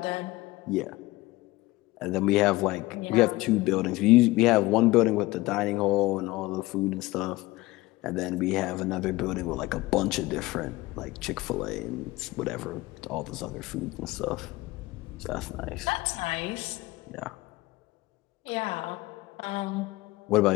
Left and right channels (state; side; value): quieter; right; 19.9 dB